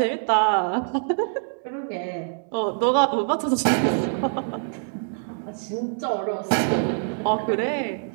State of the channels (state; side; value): silent; left; digital silence